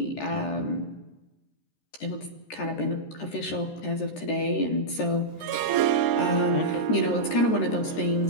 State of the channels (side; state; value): right; late; 13 ms